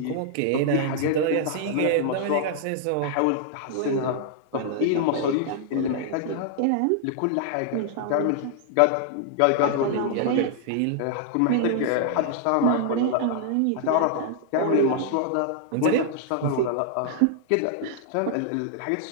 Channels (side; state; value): both; different; correlation -0.01